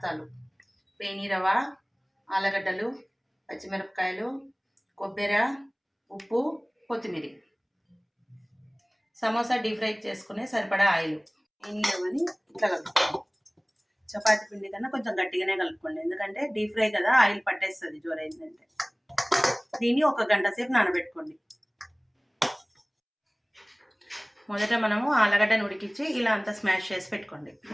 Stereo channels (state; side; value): identical; both; correlation 1.00